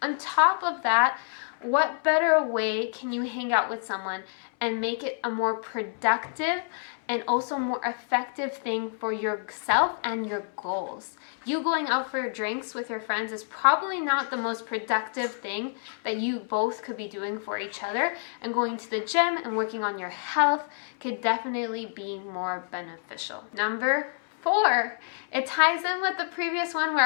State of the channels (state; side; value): silent; right; 59 dB below the other